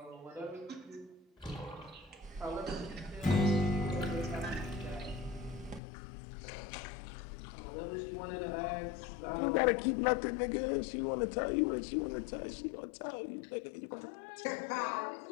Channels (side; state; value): right; drops out; at 5.8 s